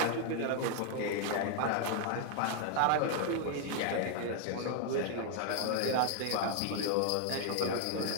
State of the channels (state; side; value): different; both; correlation 0.00